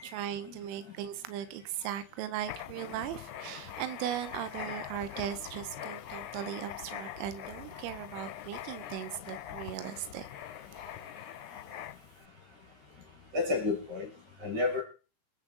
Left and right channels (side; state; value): left; late; 21 ms